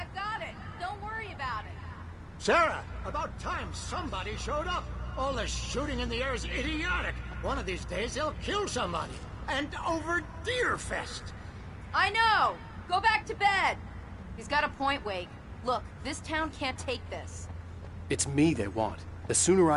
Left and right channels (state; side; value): identical; both; correlation 1.00